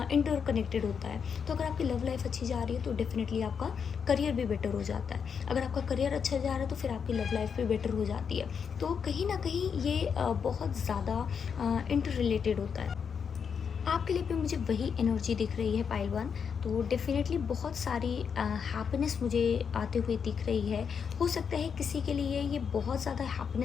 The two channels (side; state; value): right; quieter; 6.6 dB